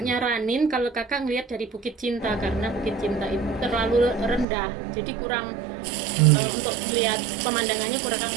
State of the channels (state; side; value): drops out; left; at 4.5 s